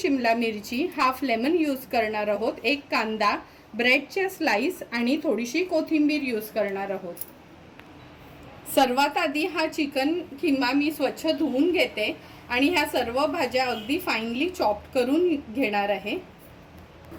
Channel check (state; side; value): identical; both; correlation 1.00